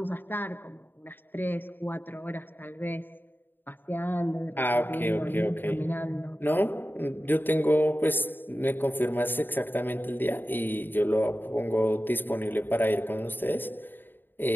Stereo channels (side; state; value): right; late; 0.095 ms